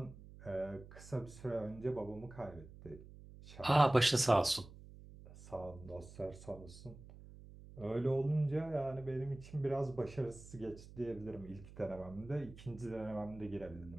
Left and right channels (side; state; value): right; noise; hum, 17 dB below the sound